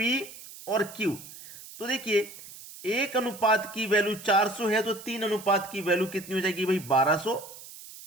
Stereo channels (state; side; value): noise; right; hiss, 16 dB below the sound